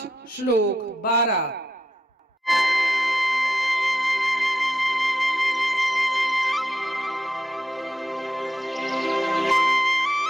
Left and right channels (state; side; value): normal; both; correlation 0.84